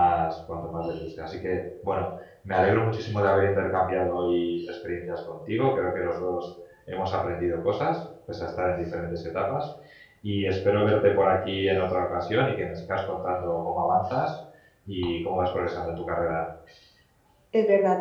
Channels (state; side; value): identical; both; correlation 1.00